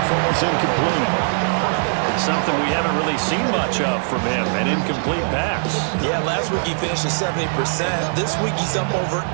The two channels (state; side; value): silent; left; digital silence